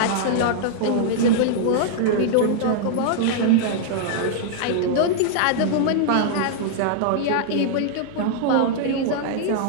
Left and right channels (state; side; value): different; both; correlation -0.01